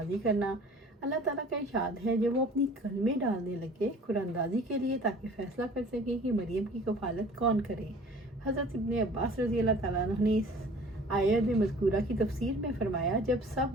کرنا۔ اللہ تعالیٰ کا ارشاد ہے جب وہ اپنی کلمے ڈالنے لگے قرآن اندازی کے لیے تاکہ فیصلہ کر سکے کہ مریم کی کفالت کون کرے۔ حضرت ابن عباس رضی اللہ تعالیٰ عنہ نے اس آیت مذکورہ کی تفسیر میں فرمایا، جب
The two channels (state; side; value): normal; both; correlation 0.48